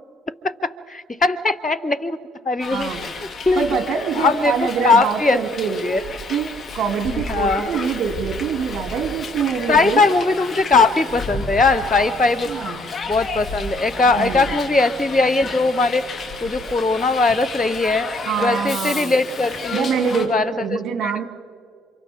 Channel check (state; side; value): normal; both; correlation 0.64